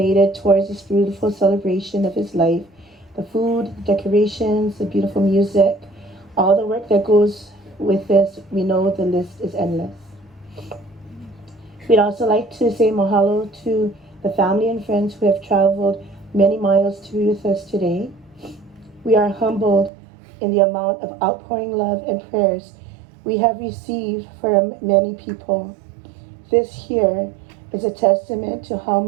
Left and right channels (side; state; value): left; drops out; at 19.9 s